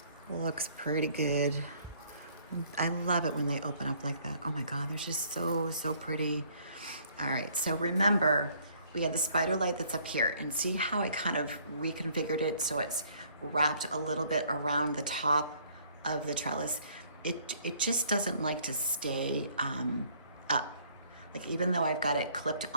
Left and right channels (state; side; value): inverted; both; correlation -0.61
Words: Looks pretty good. I love it when they open up like that. Oh my God, they're just so, so pretty. All right, so remember, we had the spider light that's up here, and see how I kind of reconfigured it so it's wrapped a little bit around the top of the trellis. It just doesn't like to stay up. Like, even though I've got it clipped